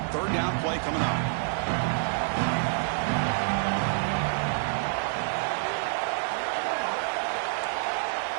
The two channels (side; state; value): left; silent; 60 dB below the other